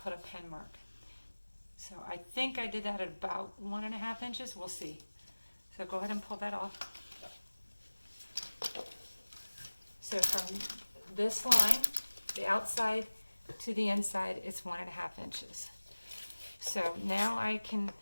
put a pen mark. So I think I did that at about 1.5 inches. We'll see. So go ahead and pull that off. So from this line, the outside to the inside, it's 1.5 inches. So now I can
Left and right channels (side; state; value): both; inverted; correlation -1.00